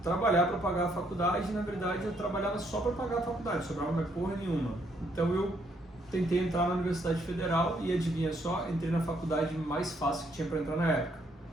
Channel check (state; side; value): normal; both; correlation 0.71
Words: trabalhar para pagar a faculdade e, na verdade, eu trabalhava só para pagar a faculdade, sobrava mais porra nenhuma. Então eu tentei entrar na Universidade Federal e, adivinha só, entrei na faculdade mais fácil que tinha para entrar na época,